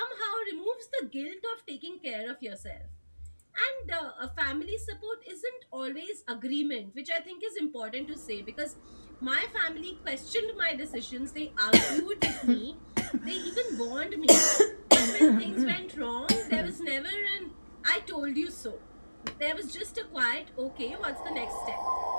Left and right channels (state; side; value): inverted; both; correlation -1.00